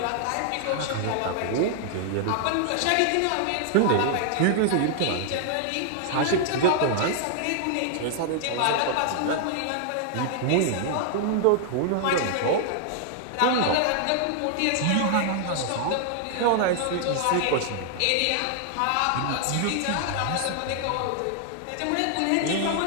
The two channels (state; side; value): different; both; correlation 0.00